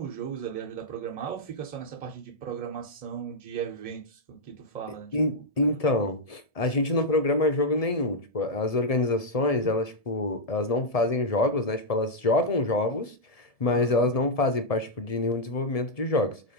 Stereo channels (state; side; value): late; right; 1.7 ms